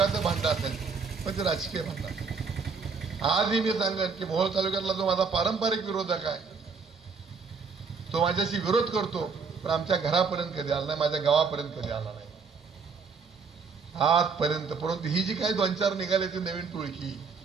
भांडण असेल पण ते राजकीय भांडण. आजही मी सांगेन की मोहोळ तालुक्यातला जो माझा पारंपरिक विरोधक आहे तो माझ्याशी विरोध करतो, पण आमच्या घरापर्यंत कधी आला नाही, माझ्या गावापर्यंत कधी आला नाही आजपर्यंत. परंतु ही जी काही 2-4 निघाली ती नवीन टोळकी,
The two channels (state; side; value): quieter; left; 5.3 dB